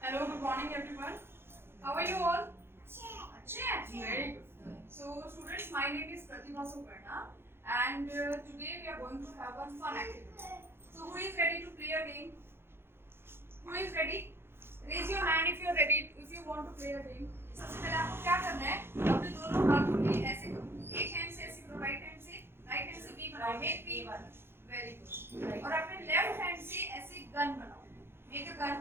good morning everyone. How are you all? Very good. So students, my name is Pratibha Suparna and today we are going to have one fun activity. So who is ready to play a game? Who is ready? Raise your hand if you are ready, if you want to play a game. सबसे पहले आपको क्या करना है, अपने दोनों हाथों को ऐसे करो, एक हैंड से ऐसे करो, राइट हैंड से वी बनाओ, make V one, very good. और अपने लेफ्ट हैंड से ऐसे गन बनाओ, मेक अ गन,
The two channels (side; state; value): left; late; 0.11 ms